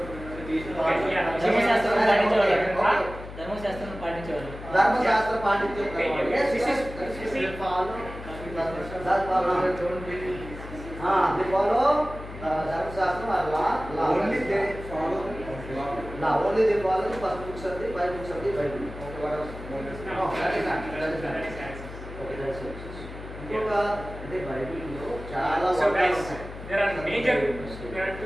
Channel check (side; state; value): left; noise; hum, 12 dB below the sound